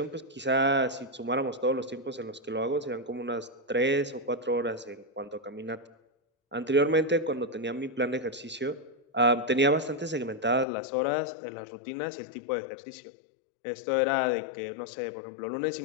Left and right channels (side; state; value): right; drops out; at 10.7 s